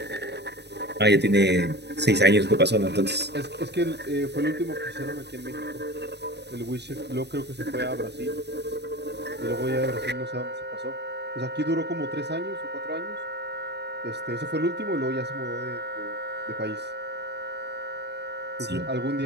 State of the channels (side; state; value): left; late; 0.49 ms